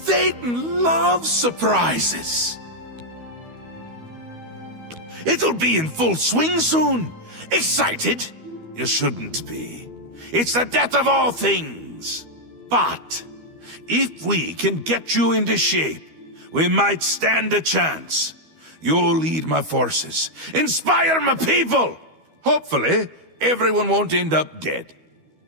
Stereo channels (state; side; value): late; left; 12 ms